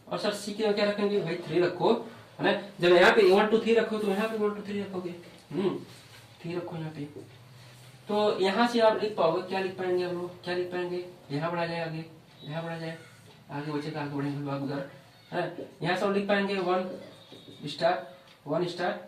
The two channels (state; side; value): identical; both; correlation 1.00